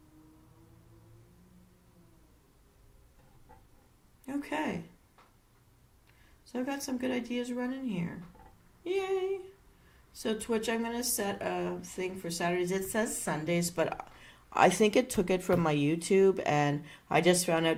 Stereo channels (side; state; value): both; identical; correlation 1.00